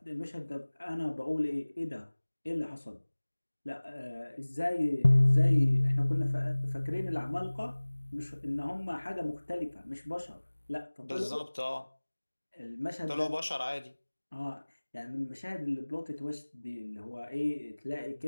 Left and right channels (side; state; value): both; inverted; correlation -1.00